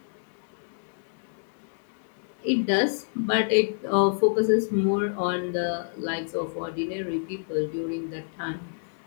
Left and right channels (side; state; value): right; silent; digital silence